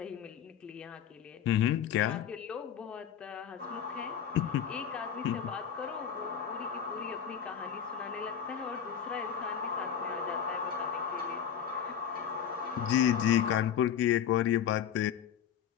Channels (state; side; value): quieter; right; 8.6 dB